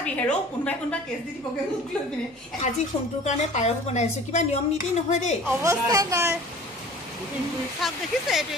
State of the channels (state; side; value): normal; both; correlation 0.44